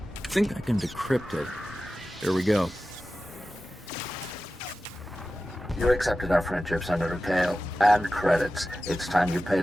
I think I can decrypt it. Here we go. You accepted our friendship, Senator Kale, and credits. It's time you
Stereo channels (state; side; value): normal; both; correlation 0.94